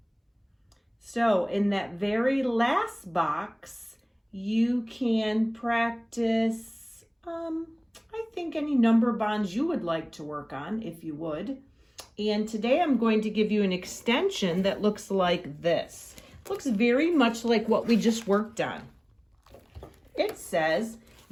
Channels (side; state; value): both; identical; correlation 1.00